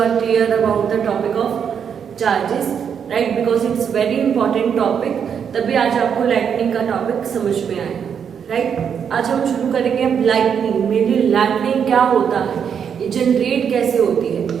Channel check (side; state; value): left; quieter; 7.5 dB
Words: are clear about the topic of charges, right, because it's very important topic, तभी आज आपको लाइटनिंग का टॉपिक समझ में आया, राइट। आज हम शुरू करेंगे अब लाइटनिंग। मेरी लाइटनिंग क्या होता है, ये जनरेट कैसे होती है।